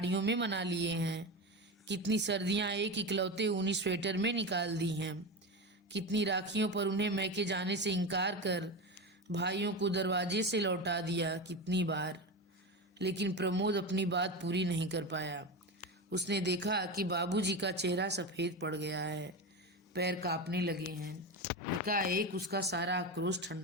में मना लिए हैं, कितनी सर्दियां एक इकलौते ऊनी स्वेटर में निकाल दी हैं, कितनी राखियों पर उन्हें मैके जाने से इनकार कर भाइयों को दरवाजे से लौटा दिया, कितनी बार। लेकिन प्रमोद अपनी बात पूरी नहीं कर पाया। उसने देखा कि बाबूजी का चेहरा सफेद पड़ गया है, पैर कांपने लगे हैं। एकाएक उसका सारा आक्रोश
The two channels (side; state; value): both; normal; correlation 0.21